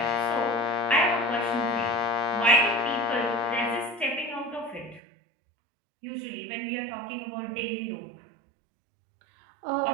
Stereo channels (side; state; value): left; drops out; at 5.0 s